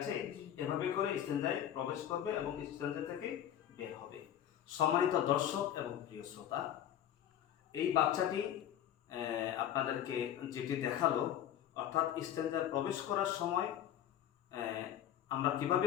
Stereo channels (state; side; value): quieter; right; 10.7 dB